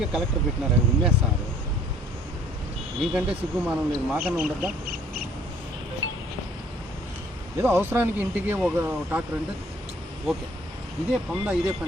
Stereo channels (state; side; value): normal; both; correlation 0.57